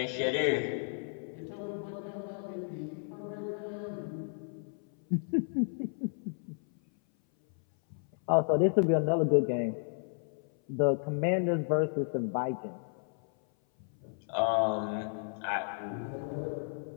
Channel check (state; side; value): silent; right; 56 dB below the other